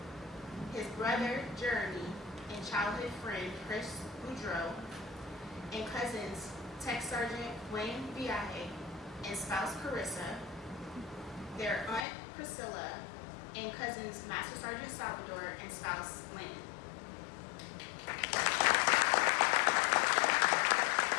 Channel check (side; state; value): right; drops out; at 12.1 s